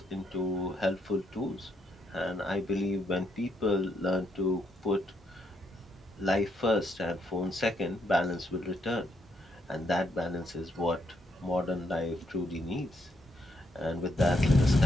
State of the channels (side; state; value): both; normal; correlation 0.76